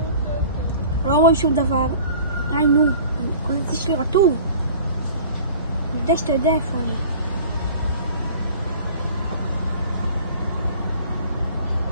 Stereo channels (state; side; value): inverted; both; correlation -0.46